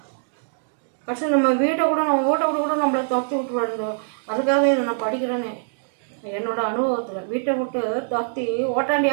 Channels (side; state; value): left; silent; digital silence